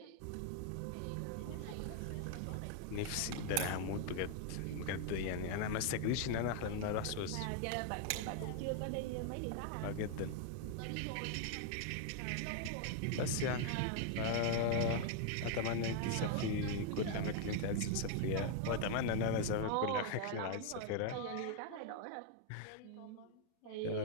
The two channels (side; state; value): both; different; correlation 0.00